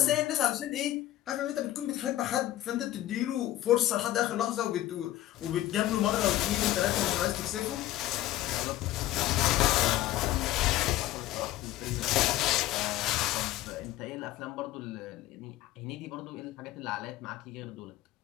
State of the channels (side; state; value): right; quieter; 14.7 dB